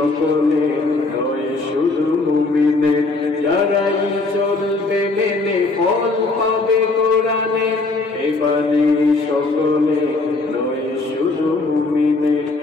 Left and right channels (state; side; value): quieter; right; 3.4 dB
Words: নয় শুধু মুমিনের যারাই চলবে মেনে ফল পাবে কোরআনে এই বাণী সকলে নয় শুধু মুমিনের